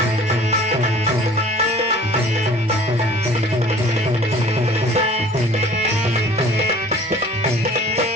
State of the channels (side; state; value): both; normal; correlation 0.49